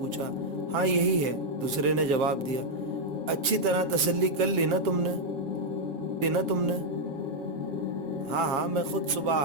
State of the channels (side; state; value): left; late; 7.1 ms